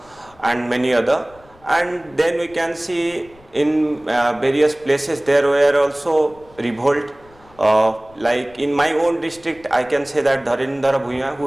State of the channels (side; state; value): left; noise; rumble, 27 dB below the sound